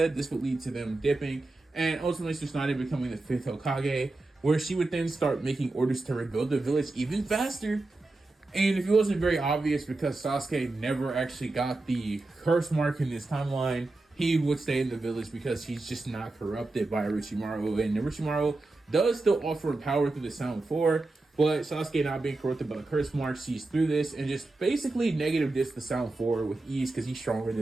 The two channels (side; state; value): left; quieter; 3.1 dB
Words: this would lead to them dipping, and ultimately Tsunade becoming the 5th Hokage, where she would then start making orders to rebuild the village even faster. And if it wasn't very obvious, because Sasuke never actually got the curse mark in this timeline, he would stay in the village because he's just not corrupted by Orochimaru. And Orochimaru does still offer power through the Sound 4, But Sasuke, not being corrupted by the curse mark, sees through this and just basically negative discs the sound forward with ease because he's stronger